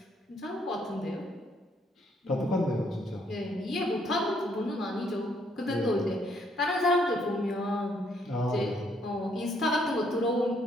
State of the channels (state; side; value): normal; both; correlation 0.69